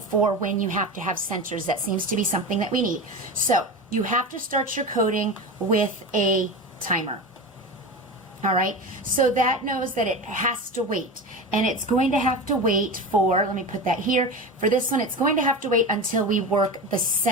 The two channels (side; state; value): both; normal; correlation 0.26